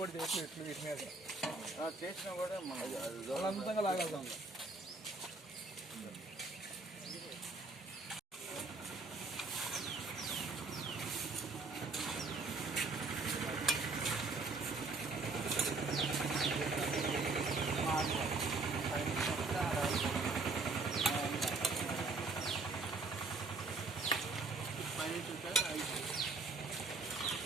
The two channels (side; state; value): left; quieter; 3.8 dB